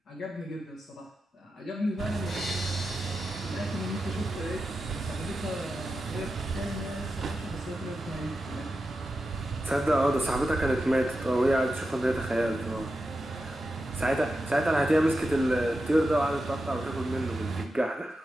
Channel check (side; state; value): both; normal; correlation 0.90